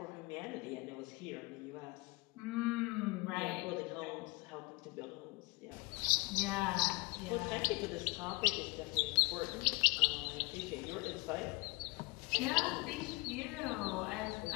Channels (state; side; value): quieter; right; 24.9 dB